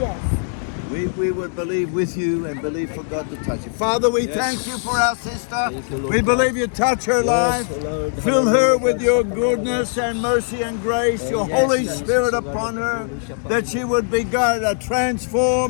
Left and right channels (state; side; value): silent; right; 65 dB below the other